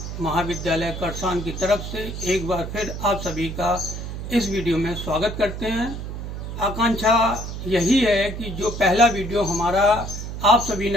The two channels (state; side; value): noise; right; hum, 7 dB below the sound